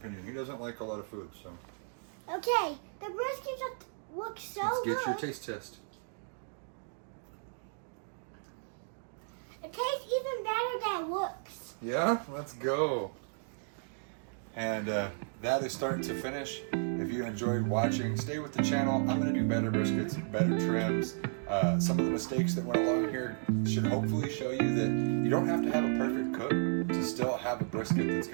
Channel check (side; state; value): left; silent; digital silence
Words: He doesn't like a lot of food, so. Okay, the brisket just looks so good. Let's get your taste test. It tastes even better than it looks. Yeah, let's go. And that is starting to finish. If you enjoyed watching, stay with the channel. I'm gonna do better briskets, better trims. Some of the mistakes that went along here should hopefully show you that you don't have to have a perfect cook to still have a brisket that's